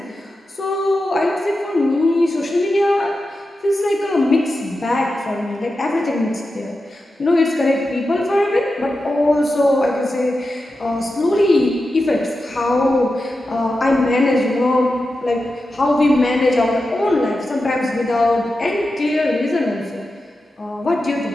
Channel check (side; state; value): both; normal; correlation 0.91